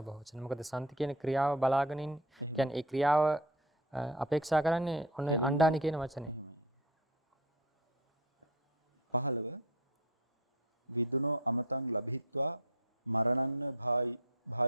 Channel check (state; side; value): normal; both; correlation 0.26